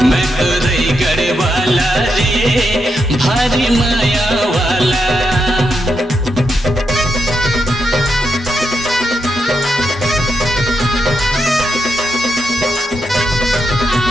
मैं तो रही गढ़वाला रे भारी माया वाला।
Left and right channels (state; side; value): normal; both; correlation 0.83